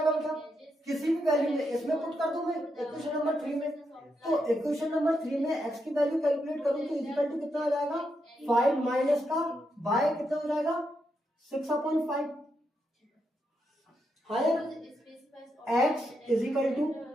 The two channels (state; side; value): normal; both; correlation 0.82